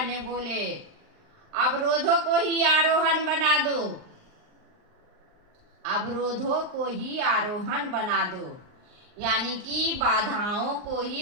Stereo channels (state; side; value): late; left; 39 ms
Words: ने बोले अवरोधों को ही आरोहण बना दो, अवरोधों को ही आरोहण बना दो, यानी कि बाधाओं को